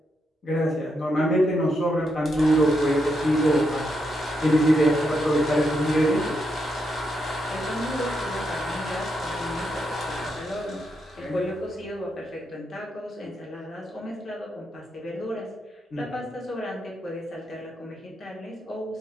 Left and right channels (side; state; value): both; normal; correlation 0.81